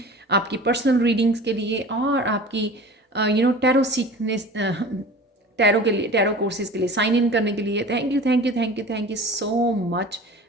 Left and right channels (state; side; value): normal; both; correlation 0.40